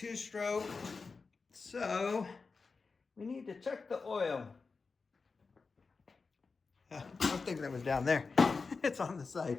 So we need to check the oil. I was thinking that was down there. It's on the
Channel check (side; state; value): right; quieter; 4.5 dB